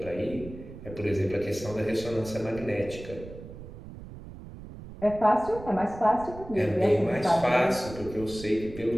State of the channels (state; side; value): noise; right; rumble, 14 dB below the sound